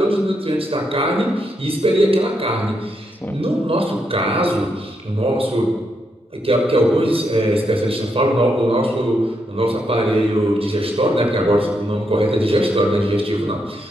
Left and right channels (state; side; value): normal; both; correlation 0.80